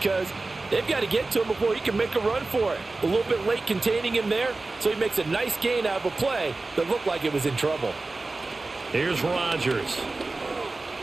they've got to get to him before he can make a run for it. A little bit late containing him there, so he makes a nice gain out of a play that looked like it was in trouble. Here's Rodgers.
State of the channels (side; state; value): left; quieter; 3.4 dB